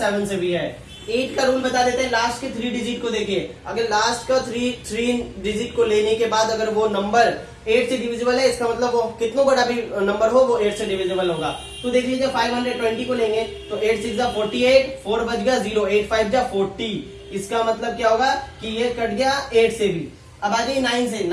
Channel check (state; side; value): identical; both; correlation 1.00